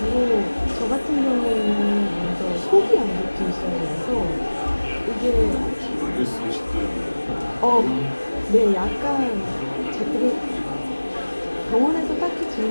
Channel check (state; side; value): inverted; both; correlation -1.00